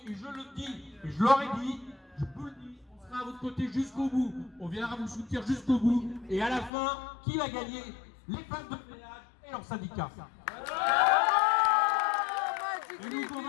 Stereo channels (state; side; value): drops out; right; at 6.7 s